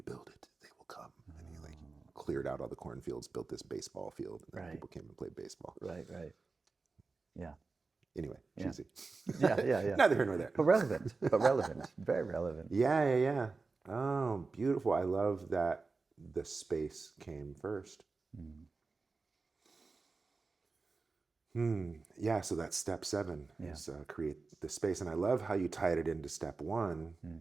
build it, they will come. And he like cleared out all the cornfields, built this baseball field, and then people came and played baseball. Right. Yeah. Anyway, cheesy. Yeah. Neither here nor there. But relevant. Very relevant. Yeah. Oh, beautiful. I love that the space came first. Yeah, so that's step 7 is create the space. And I love how you tied it into step 1,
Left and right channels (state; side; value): quieter; left; 4.1 dB